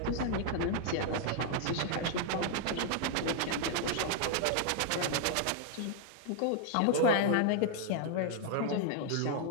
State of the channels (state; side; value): different; both; correlation 0.00